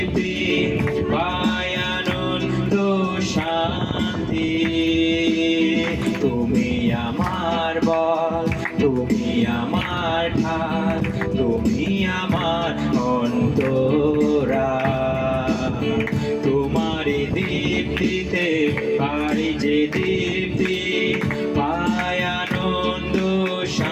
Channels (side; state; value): both; identical; correlation 1.00